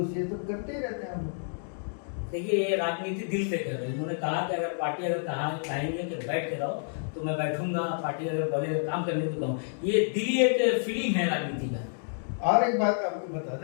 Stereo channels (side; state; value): right; silent; digital silence